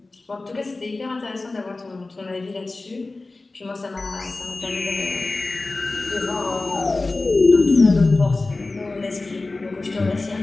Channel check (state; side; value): quieter; right; 3.3 dB